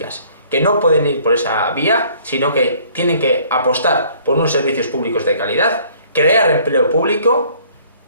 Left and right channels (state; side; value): inverted; both; correlation -0.57